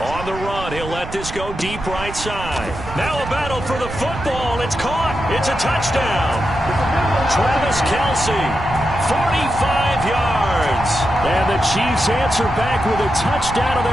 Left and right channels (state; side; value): noise; right; rumble, 10 dB below the sound